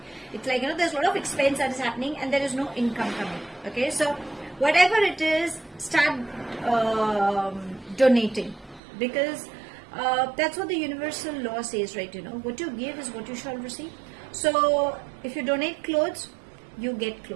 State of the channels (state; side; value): drops out; left; at 8.8 s